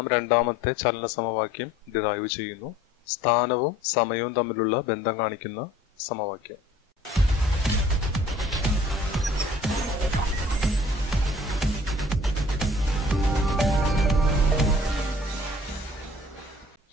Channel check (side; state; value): both; normal; correlation 0.52